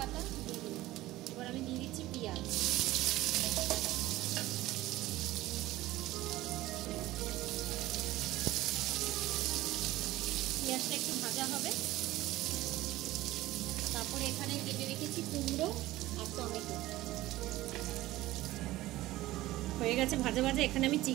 दिए दिलाम, এবার আমি দিয়ে দিচ্ছি পেঁয়াজ। পেঁয়াজটা একটু ভাজা হবে, তারপরে এখানে কেটে রেখেছি কুমড়ো আর টমেটো। হয়ে গেছে ভাজা ভাজা। এখানে আমি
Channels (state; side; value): quieter; left; 16.8 dB